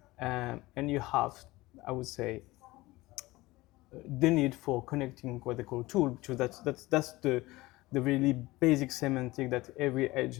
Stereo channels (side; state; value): right; quieter; 19.9 dB